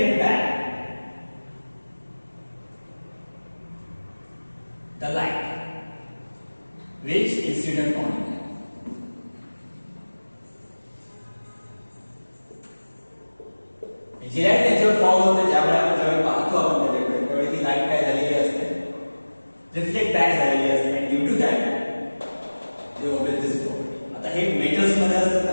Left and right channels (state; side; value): inverted; both; correlation -1.00